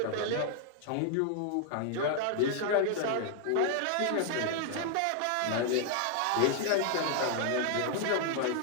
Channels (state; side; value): different; both; correlation 0.00